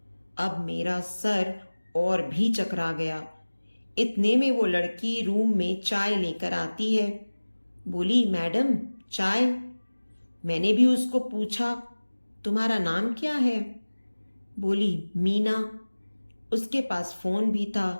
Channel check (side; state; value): both; inverted; correlation -1.00